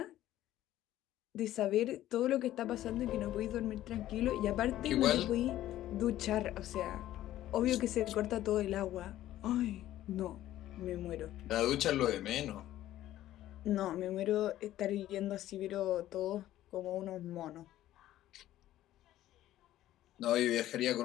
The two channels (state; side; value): quieter; right; 13.7 dB